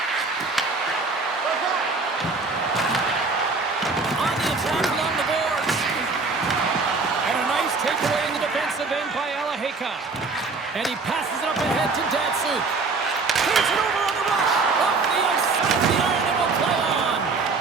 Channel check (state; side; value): quieter; left; 4.1 dB